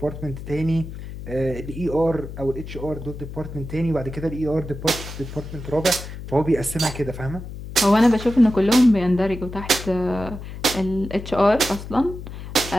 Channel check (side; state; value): left; noise; hum, 10 dB below the sound